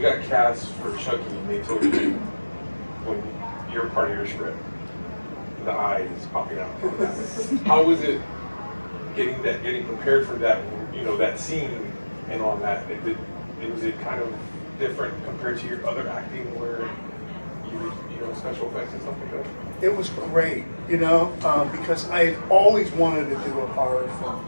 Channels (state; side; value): inverted; both; correlation -1.00